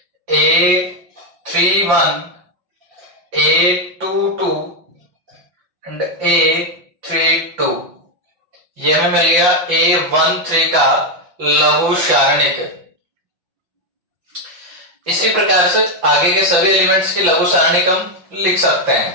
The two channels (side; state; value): left; late; 5.9 ms